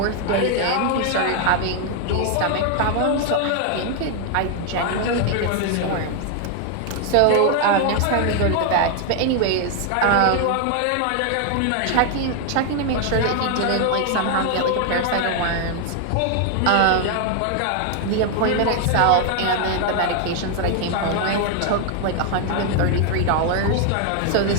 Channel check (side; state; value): both; different; correlation 0.00